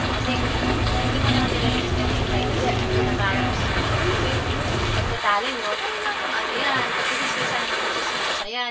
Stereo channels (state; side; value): identical; both; correlation 1.00